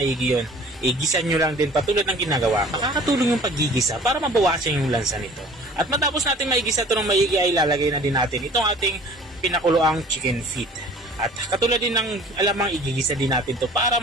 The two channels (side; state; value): both; normal; correlation 0.48